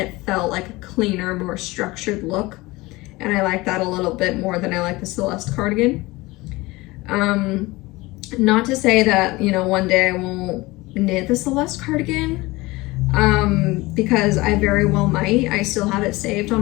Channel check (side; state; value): right; quieter; 21.2 dB